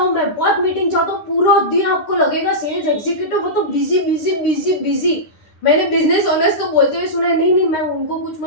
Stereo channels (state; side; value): late; right; 10 ms